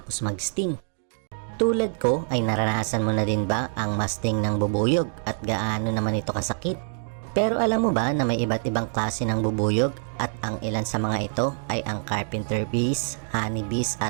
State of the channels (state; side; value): silent; left; 59 dB below the other